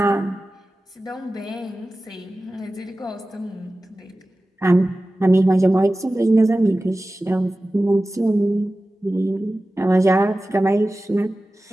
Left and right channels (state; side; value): normal; both; correlation 0.95